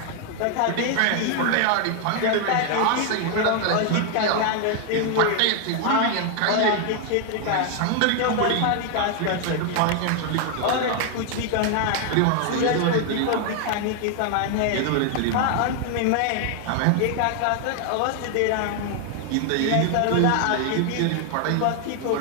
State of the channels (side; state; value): both; different; correlation 0.00